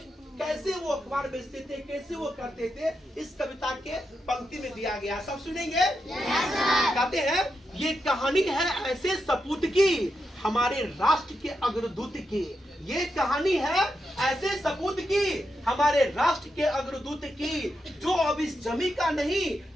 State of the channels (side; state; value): both; normal; correlation 0.85